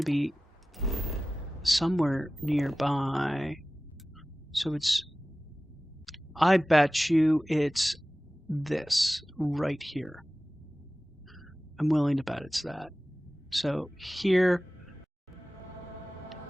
be somewhere nearby. So it's... I bet you it's this right here. I'm willing to bet it's that. So here,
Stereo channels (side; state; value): both; normal; correlation 0.96